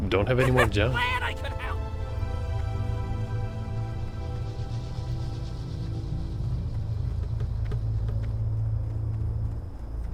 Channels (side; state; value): both; identical; correlation 1.00